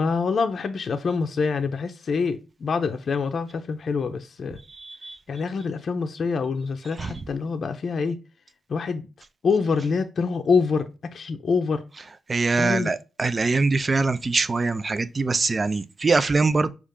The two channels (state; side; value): normal; both; correlation 0.86